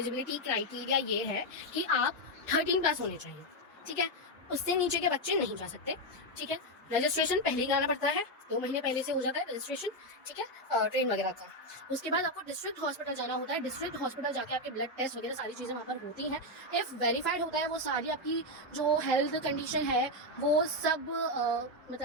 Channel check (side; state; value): both; normal; correlation 0.05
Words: क्राइटेरिया ये है कि आप 13+ होने चाहिए। ठीक है, उससे नीचे के बच्चे नहीं जा सकते। ठीक है, रजिस्ट्रेशन पहले ही कराना पड़ता है, 2 महीने पहले से हो जाता है रजिस्ट्रेशन। ठीक है, ट्रेन वगैरह का। उसके बाद आपको डिस्ट्रिक्ट हॉस्पिटल जाना होता है। डिस्ट्रिक्ट हॉस्पिटल जाके आपके ब्लड टेस्ट वगैरह सारी चीज़ें वहाँ पर होती हैं। इफ़ वेरीफाइड होता है वो सारी आपकी जो हेल्थ कंडीशन है वो सब